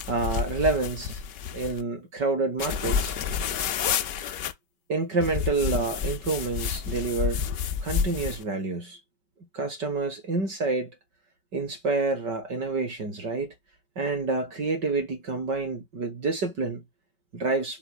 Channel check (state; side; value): late; left; 5.2 ms